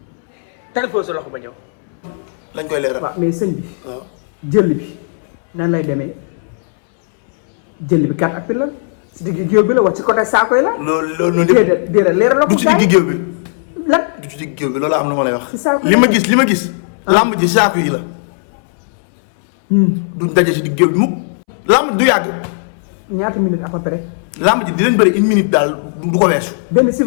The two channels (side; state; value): right; silent; 67 dB below the other